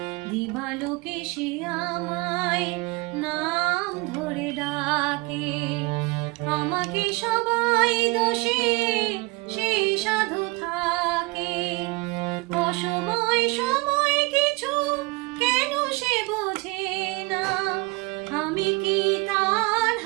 দিবালোকে সে আমায় নাম ধরে ডাকে, আমাকে সবাই দোষে সে সাধু থাকে। অসময় সময় কিছু কেন সে বোঝে না, আমি কি তার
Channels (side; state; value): left; quieter; 24.9 dB